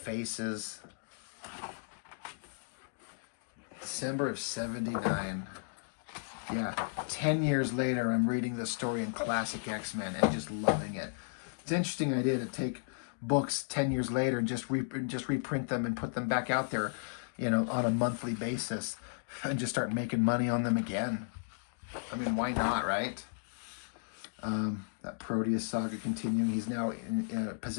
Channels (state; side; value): silent; right; digital silence